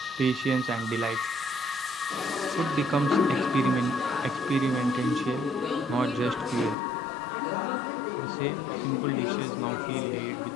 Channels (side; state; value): right; drops out; at 6.8 s